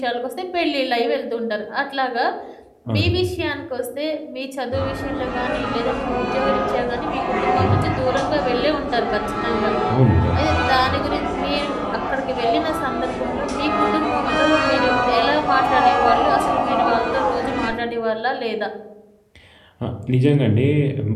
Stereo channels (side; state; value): both; identical; correlation 1.00